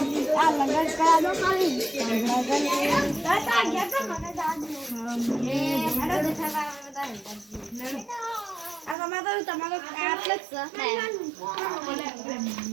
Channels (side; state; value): left; drops out; at 9.0 s